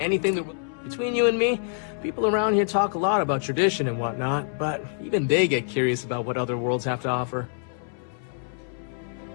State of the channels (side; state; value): right; silent; 61 dB below the other